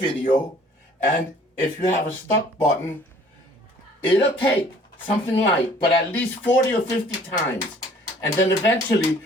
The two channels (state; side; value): normal; both; correlation 0.55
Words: and if you have a stuck button, it'll take something like, but at least 40 or 50 times. And then eventually,